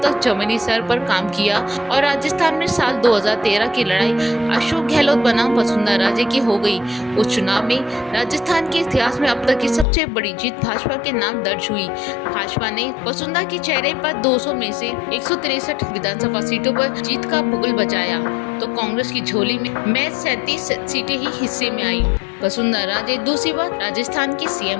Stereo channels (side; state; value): right; drops out; at 9.9 s